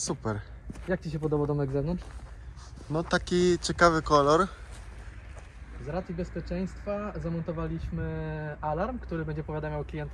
Jak Ci się podoba domek z zewnątrz? No taki ciekawy kolor. Z racji bezpieczeństwa zamontowaliśmy alarm, który będzie powiadamiał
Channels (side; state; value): both; identical; correlation 1.00